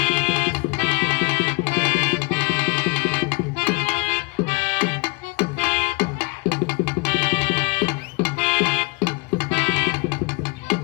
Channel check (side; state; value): right; quieter; 27.3 dB